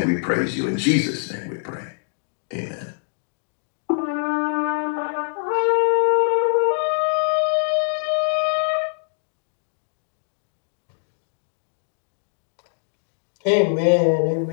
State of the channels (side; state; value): right; silent; digital silence